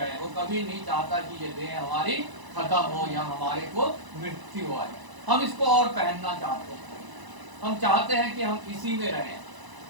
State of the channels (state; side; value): late; left; 1.0 ms